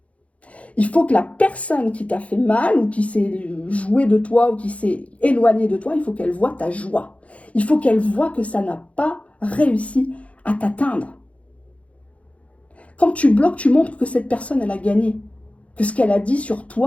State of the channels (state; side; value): late; right; 0.064 ms